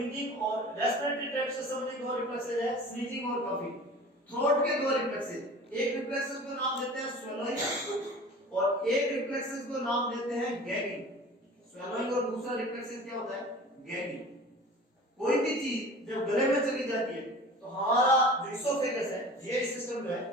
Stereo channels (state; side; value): normal; both; correlation 0.40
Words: और रेस्पिरेटरी ट्रैक्ट से संबंधित दो रिफ्लेक्सेस है स्नीजिंग और कफिंग। थ्रोट के दो रिफ्लेक्सेस, एक रिफ्लेक्सेस को नाम देते हैं स्वेलोइंग और एक रिफ्लेक्सेस को नाम देते हैं गैगिंग। स्वेलोइंग और दूसरा रिफ्लेक्सेस क्या होता है? गैगिंग। कोई भी चीज जब गले में चली जाती है तो हमारा जो इसोफेगस है, ये सिस्टम जो है,